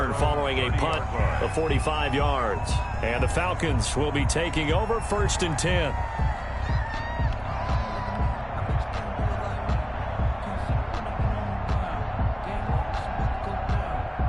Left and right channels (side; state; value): both; identical; correlation 1.00